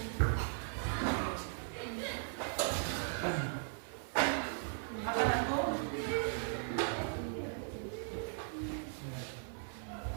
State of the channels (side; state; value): left; silent; 52 dB below the other